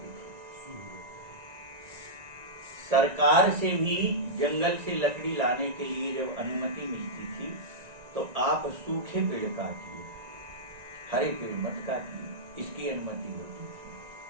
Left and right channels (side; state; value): left; late; 1.9 ms